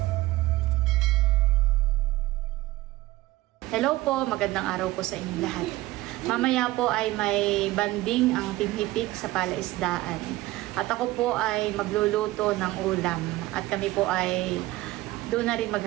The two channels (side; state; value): left; quieter; 18.1 dB